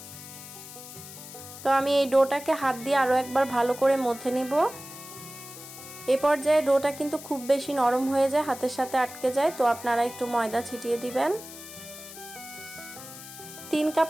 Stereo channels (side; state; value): left; noise; hiss, 14 dB below the sound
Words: তো আমি এই ডোটাকে হাত দিয়ে আরো একবার ভালো করে মথে নিব। এই পর্যায়ে ডোটা কিন্তু খুব বেশি নরম হয়ে যায়, হাতের সাথে আটকে যায়, তো আপনারা একটু ময়দা ছিটিয়ে দিবেন। 3 কাপ